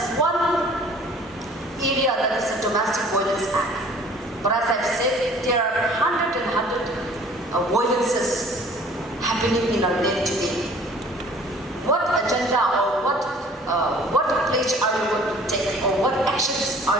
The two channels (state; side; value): normal; both; correlation 0.51